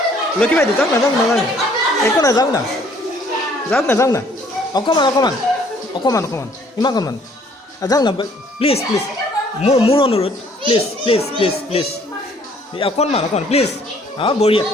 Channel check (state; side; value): normal; both; correlation 0.60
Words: যাওক না একো নাই যাওক না অকণমান ইমানকণমান যাওক না প্লিজ মোৰ অনুৰোধ প্লিজ অকণমান প্লিজ অঁ বঢ়িয়া